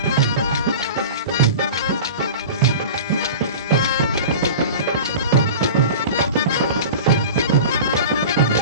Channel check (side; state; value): both; inverted; correlation -0.34